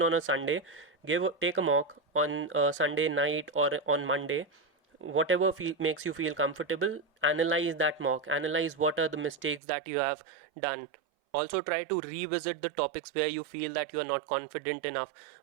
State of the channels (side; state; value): left; drops out; at 9.6 s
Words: on a Sunday, take a mock on Sunday night or on Monday, whatever makes you feel comfortable. Analyze that mock, analyze what are the mistakes that you have done. Also try to revisit the topics where you feel that you are not confident enough.